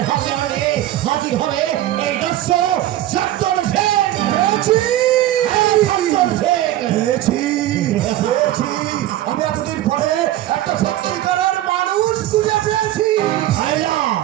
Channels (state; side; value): quieter; left; 14.0 dB